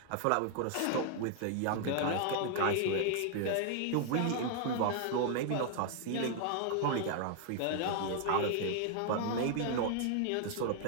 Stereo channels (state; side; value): different; both; correlation 0.00